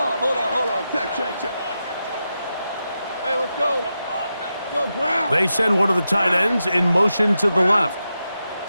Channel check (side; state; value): both; inverted; correlation -0.88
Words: Check. Hey, let's go. Go ground. They send one of the tight ends in motion to the left.